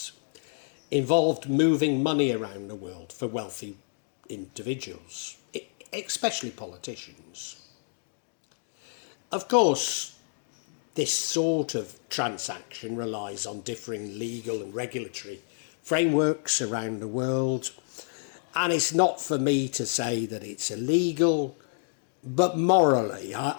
involved moving money around the world for wealthy individuals, especially politicians. Of course, this sort of transaction relies on differing legal and regulatory frameworks around the world, and it's not for me to say that it's illegal, but morally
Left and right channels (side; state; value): right; silent; 59 dB below the other